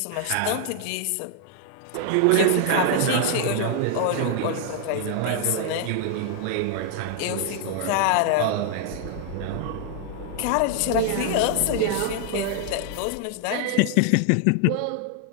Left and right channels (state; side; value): different; both; correlation 0.00